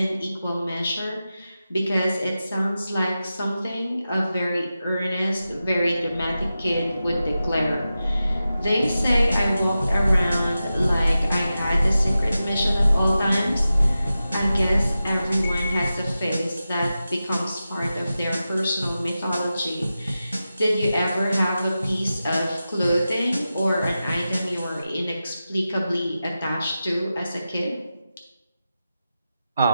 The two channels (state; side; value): inverted; both; correlation -0.92